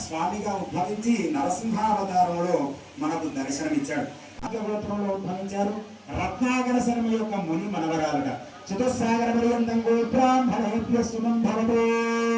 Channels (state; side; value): identical; both; correlation 1.00